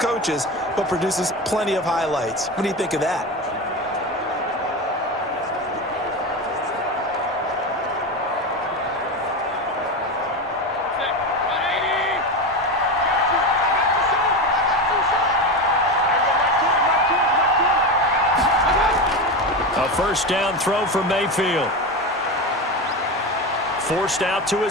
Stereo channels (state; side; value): normal; both; correlation 0.20